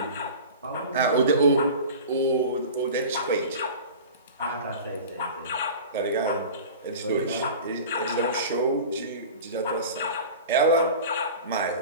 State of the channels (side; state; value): both; inverted; correlation -0.36